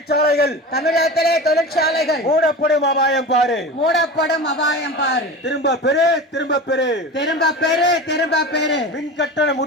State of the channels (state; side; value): normal; both; correlation 0.30